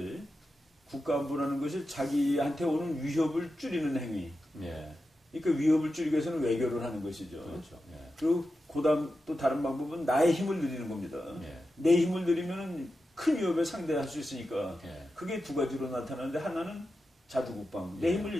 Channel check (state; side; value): normal; both; correlation 0.91